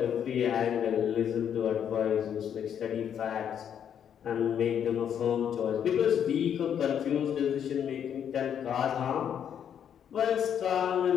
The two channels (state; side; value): quieter; right; 8.8 dB